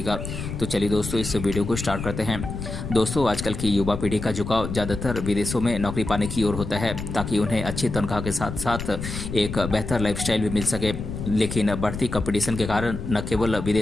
तो चलिए दोस्तों, इस वीडियो को स्टार्ट करते हैं। दोस्तों, आजकल की युवा पीढ़ी का झुकाव ज़्यादातर विदेशों में नौकरी पाने की ओर होता है ताकि उन्हें अच्छी तनख्वाह के साथ साथ एक बेहतर लाइफस्टाइल भी मिल सके। लेकिन बढ़ती कंपटीशन के कारण न केवल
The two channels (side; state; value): left; noise; rumble, 6 dB below the sound